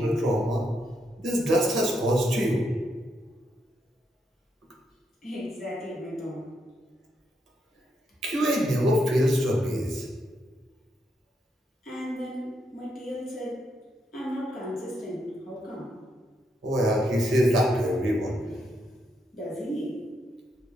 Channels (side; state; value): both; normal; correlation 0.79